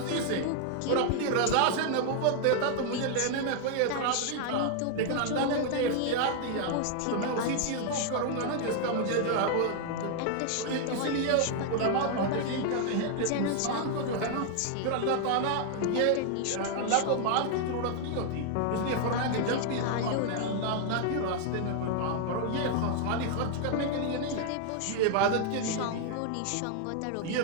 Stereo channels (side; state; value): both; different; correlation 0.00